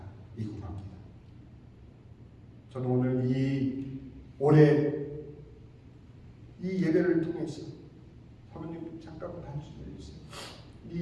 합니다. 저는 오늘 올해 이 예배를 통해서, 사모님 잠깐만 한숨 내주세요.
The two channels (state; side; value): identical; both; correlation 1.00